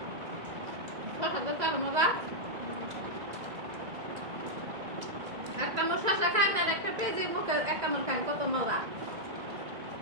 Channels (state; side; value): late; left; 2.0 ms